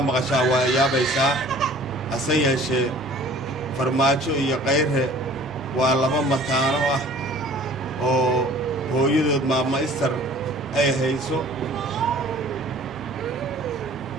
maqashaa waa yaabaysaa hase yeeshee Farmaajo iyo Khayre waa laba mataano ah oo hooyadood maama Istar ay hayso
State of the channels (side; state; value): both; normal; correlation 0.49